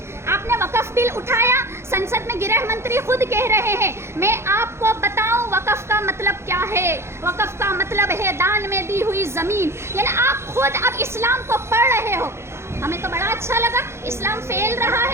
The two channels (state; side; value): late; left; 0.13 ms